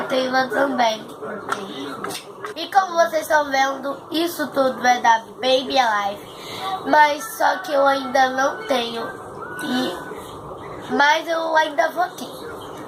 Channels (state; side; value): identical; both; correlation 1.00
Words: também. E como vocês estão vendo, isso tudo é da Baby Alive. Mas só que eu ainda não tenho. Mas eu ainda vou ter.